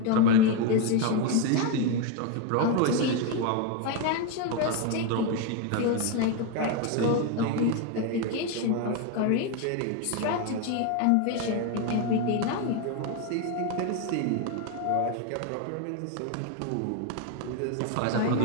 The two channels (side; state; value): both; different; correlation 0.02